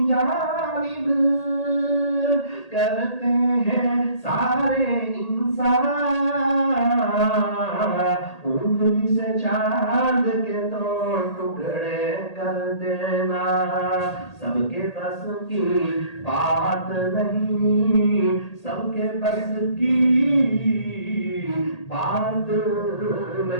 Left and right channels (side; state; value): right; late; 1.8 ms